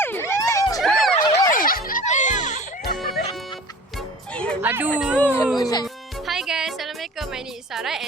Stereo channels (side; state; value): both; normal; correlation 0.42